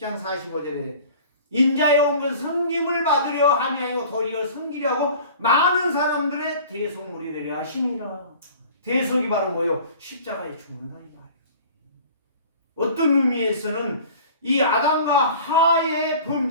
45절에 인자에 온 것은 섬김을 받으려 함이 아니고 도리어 섬기려 하고 많은 사람들의 대속물이 되려 하심이라. 대속이 바로 뭐요? 십자가에 죽는다니까. 어떤 의미에서는 이 아담과 하의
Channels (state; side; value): inverted; both; correlation -0.44